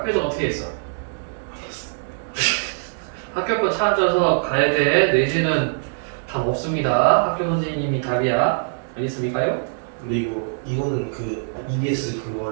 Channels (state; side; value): silent; left; digital silence